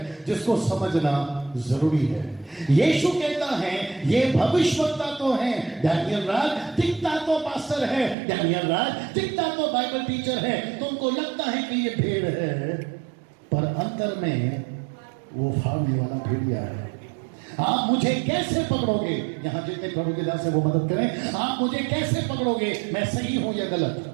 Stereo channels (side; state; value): left; drops out; at 8.2 s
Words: जिसको समझना जरूरी है। यीशु कहता है ये भविष्यवक्ता तो हैं, डैनियल राज दिखता तो पास्टर है, डैनियल राज दिखता तो बाइबल टीचर है, तुमको लगता है कि ये भेड़ है, पर अंतर में वो फाड़ने वाला भेड़िया है। आप मुझे कैसे पकड़ोगे? यहां जितने प्रभु के दास है वो मदद करें। आप मुझे कैसे पकड़ोगे मैं सही हूं या गलत?